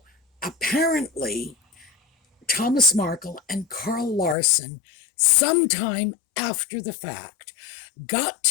apparently, Thomas Markle and Carl Larson, sometime after the fact, got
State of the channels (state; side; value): drops out; right; at 4.4 s